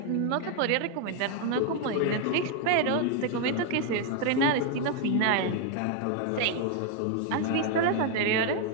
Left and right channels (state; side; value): different; both; correlation 0.01